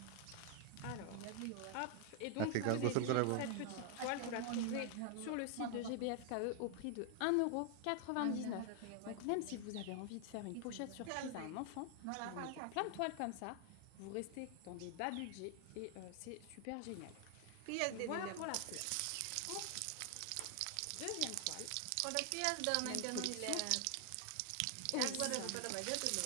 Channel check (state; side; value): different; both; correlation 0.00